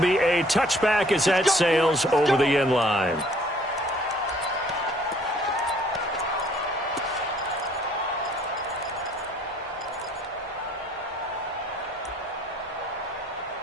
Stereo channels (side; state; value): both; normal; correlation 0.59